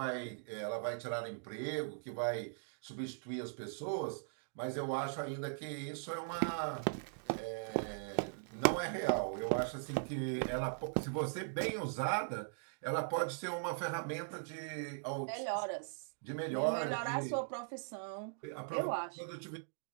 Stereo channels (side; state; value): left; silent; digital silence